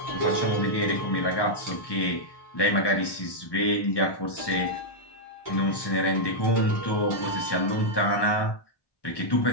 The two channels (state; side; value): late; right; 1.1 ms